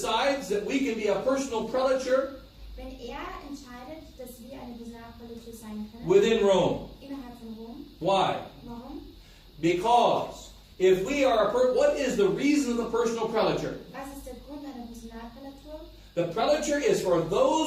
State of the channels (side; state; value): both; identical; correlation 1.00